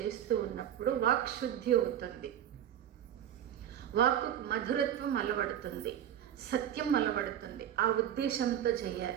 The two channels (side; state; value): left; quieter; 10.3 dB